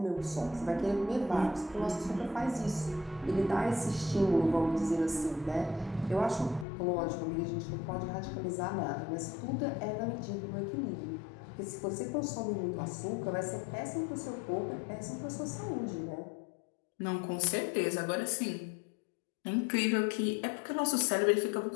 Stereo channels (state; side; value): drops out; right; at 6.7 s